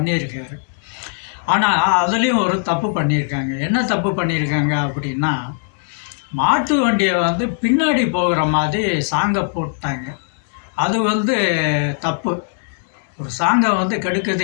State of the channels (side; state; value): right; silent; digital silence